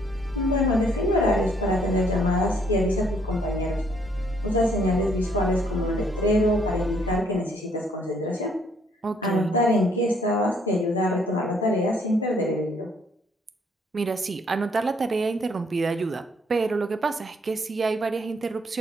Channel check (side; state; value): both; normal; correlation 0.67